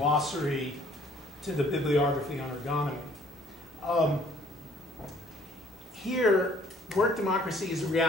to the bibliography on ergonomy. Here, work democracy is a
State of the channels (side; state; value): both; normal; correlation 0.59